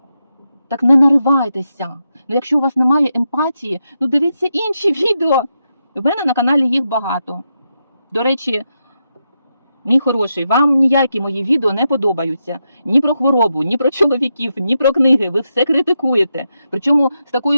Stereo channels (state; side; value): inverted; both; correlation -0.85